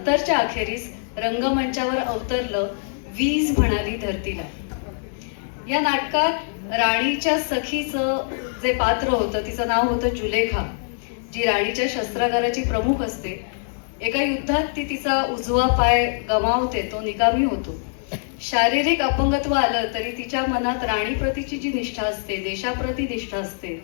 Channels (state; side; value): silent; right; digital silence